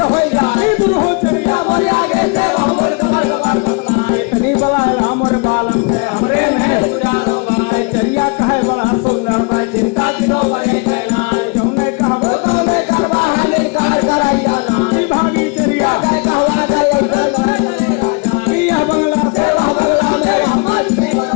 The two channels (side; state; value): right; quieter; 31.5 dB